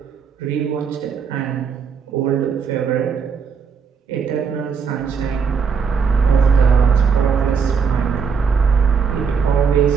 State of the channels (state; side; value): quieter; left; 6.0 dB